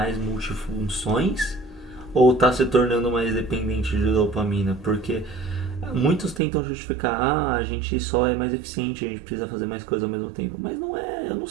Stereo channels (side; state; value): left; drops out; at 6.4 s